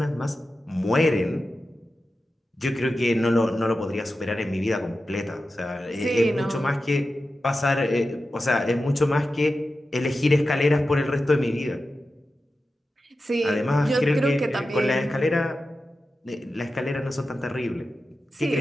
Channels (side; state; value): both; normal; correlation 0.92